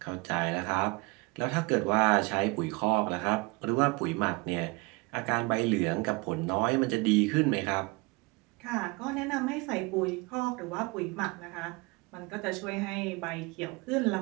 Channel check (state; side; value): quieter; left; 26.1 dB